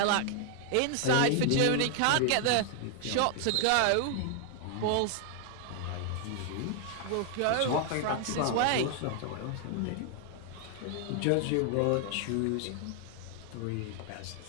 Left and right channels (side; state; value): both; different; correlation 0.00